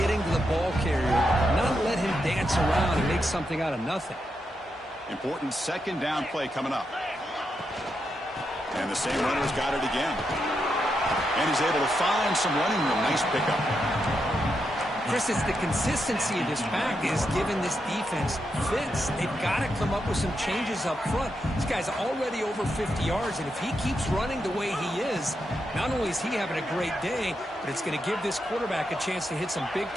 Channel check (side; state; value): both; normal; correlation 0.84